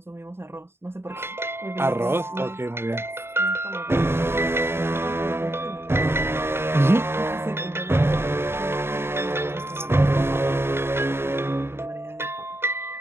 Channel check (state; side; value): late; left; 0.12 ms